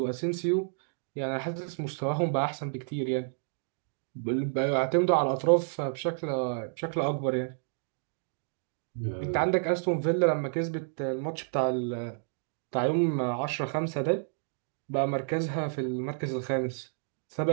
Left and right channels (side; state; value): left; silent; digital silence